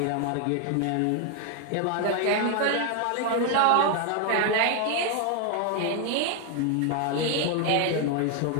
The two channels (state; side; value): different; both; correlation 0.01